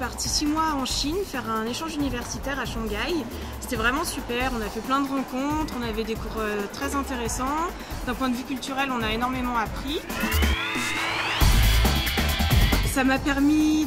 6 mois en Chine faire un échange universitaire à Shanghai. C'était vraiment super, on a fait plein de rencontres, on avait des cours très intéressants. D'un point de vue culturel, on a énormément appris. Ça m'a permis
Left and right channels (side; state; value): both; identical; correlation 1.00